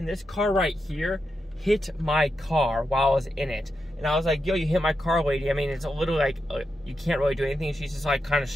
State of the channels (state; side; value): normal; both; correlation 0.87